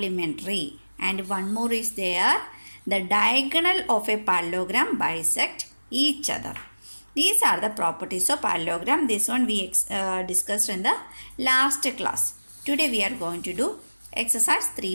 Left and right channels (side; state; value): both; inverted; correlation -1.00